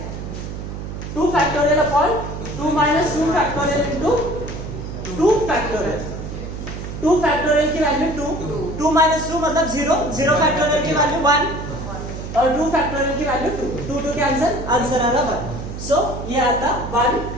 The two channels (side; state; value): right; noise; hum, 8 dB below the sound